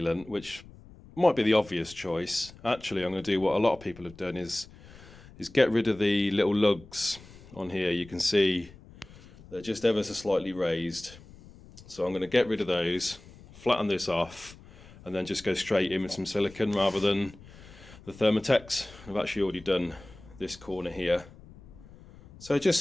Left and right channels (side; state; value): left; noise; rumble, 21 dB below the sound